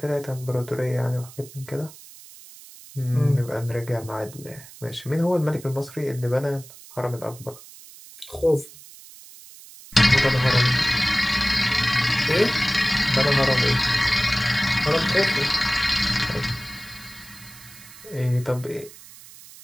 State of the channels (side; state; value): right; noise; hiss, 19 dB below the sound